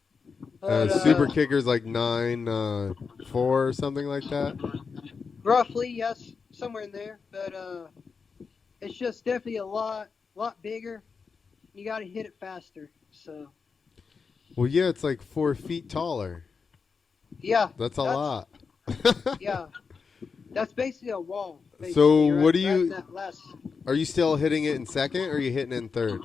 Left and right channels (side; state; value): right; quieter; 5.3 dB